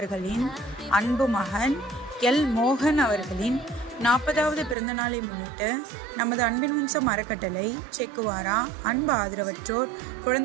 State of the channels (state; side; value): drops out; left; at 4.8 s